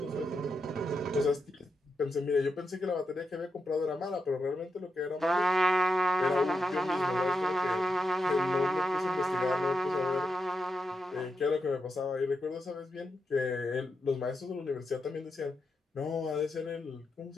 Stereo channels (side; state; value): both; normal; correlation 0.85